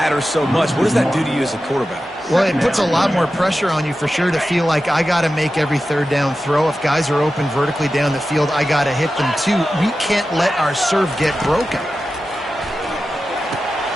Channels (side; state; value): both; normal; correlation 0.93